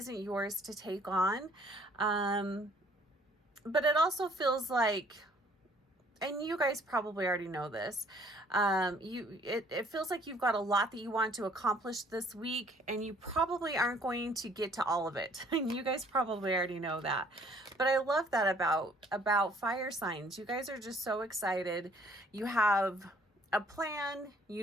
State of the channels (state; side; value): normal; both; correlation 0.59